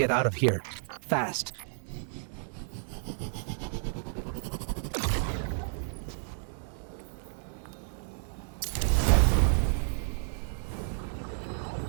out of here. Fast.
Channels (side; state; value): left; silent; 57 dB below the other